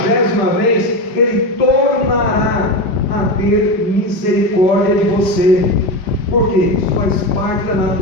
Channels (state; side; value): late; right; 5.0 ms